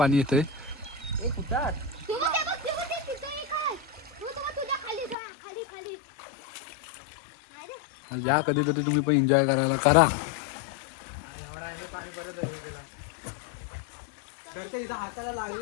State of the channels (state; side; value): drops out; right; at 5.2 s